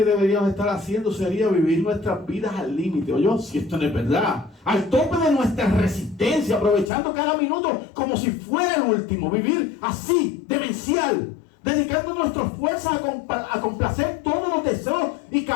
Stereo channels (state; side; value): drops out; right; at 6.9 s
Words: deberíamos estar haciendo sería vivir nuestras vidas al límite. Oye, si esto no es verdad, al tope de nuestra resistencia, aprovechando cada minuto como si fuera el último. Vivir así, demencial, dedicando nuestras fuerzas a complacer todos los deseos y